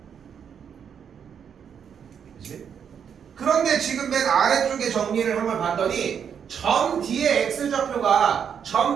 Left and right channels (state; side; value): quieter; left; 7.7 dB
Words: 그치? 그런데 지금 맨 아래쪽에 정리를 한번 봤더니 점 D의 X좌표가 점